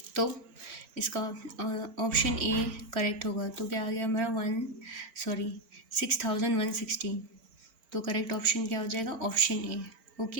तो इसका ऑप्शन ए करेक्ट होगा। तो क्या आ गया हमारा 6116। तो करेक्ट ऑप्शन क्या हो जाएगा, option A,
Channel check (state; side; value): late; left; 4.4 ms